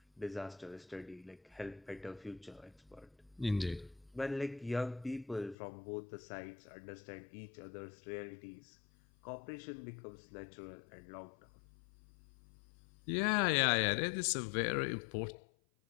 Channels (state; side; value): drops out; right; at 5.6 s